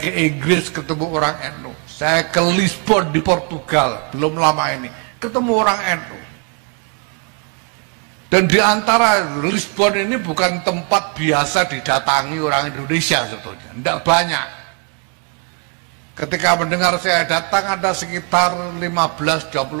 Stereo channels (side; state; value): left; quieter; 33.5 dB